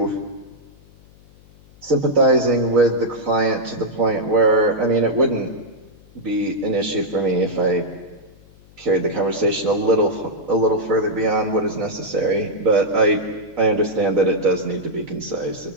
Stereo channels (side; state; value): left; noise; hum, 26 dB below the sound